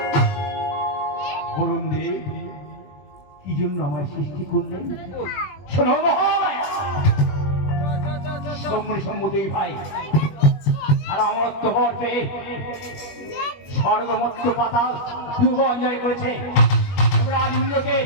বলুন দেব কি জন্য আমায় সৃষ্টি করলেন? শোনো মহামায়া, শম্ভু দুই ভাই আর অমরত্ব বর পেয়ে স্বর্গমত্ত পাতাল ভুবন জয় করেছে। দেবরাজ ইন্দ্রকে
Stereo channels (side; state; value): right; late; 21 ms